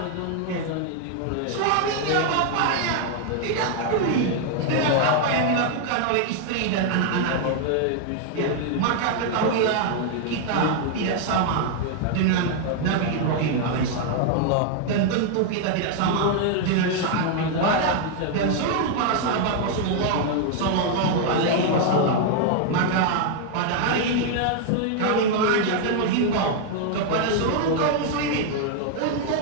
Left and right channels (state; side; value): different; both; correlation 0.00